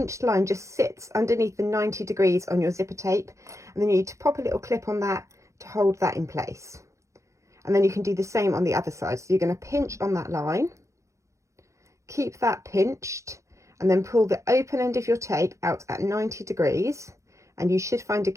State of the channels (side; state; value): left; late; 0.15 ms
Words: line just sits underneath the 90 degrees on your zipper tape. And then you need to pop a little clip on that to hold that in place. And then you can do the same on the other side. So you're going to pinch on that line, keep that pinched, and then pull the open end of your tape out at 90 degrees. And you should find